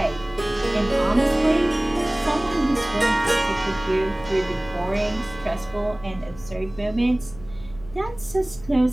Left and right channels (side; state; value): left; noise; hum, 19 dB below the sound